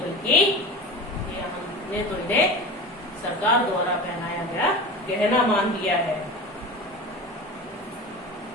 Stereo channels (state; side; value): normal; both; correlation 0.30